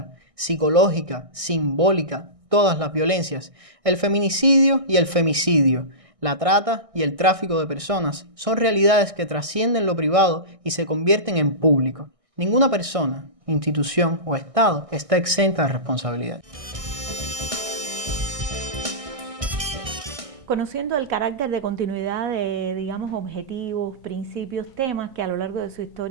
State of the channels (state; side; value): late; left; 1.6 ms